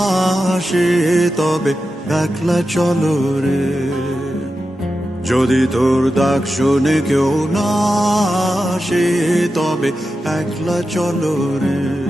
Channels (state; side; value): normal; both; correlation 0.91